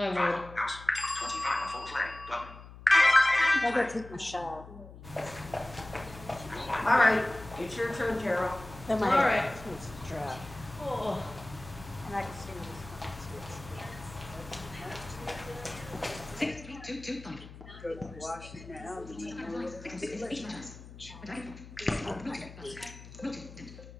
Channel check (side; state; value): left; noise; hum, 16 dB below the sound